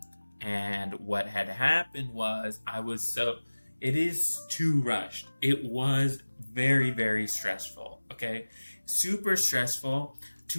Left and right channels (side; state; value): both; inverted; correlation -1.00